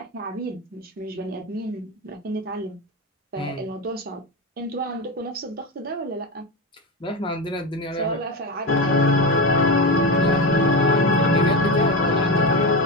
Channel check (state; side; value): normal; both; correlation 0.17